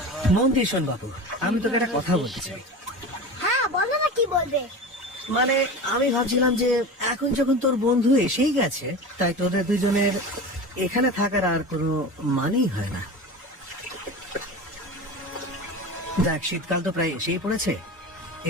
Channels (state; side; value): normal; both; correlation 0.30